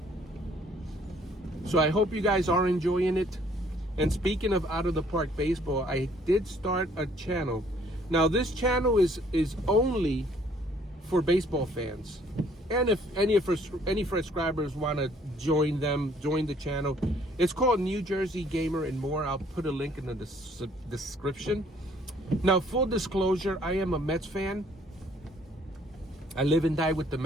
So I hope you guys are enjoying it. And speaking of out of the park baseball, I did start a channel. Now this channel is only for baseball fans. And if any subscribers want to join the channel, it's called New Jersey Gamer and More. I'll put a link in the description. Now, full disclosure, I am a Mets fan. I live and die with the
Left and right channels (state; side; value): normal; both; correlation 0.61